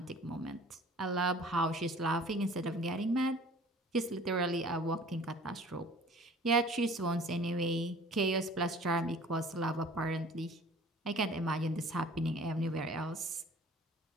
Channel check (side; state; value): both; normal; correlation 0.48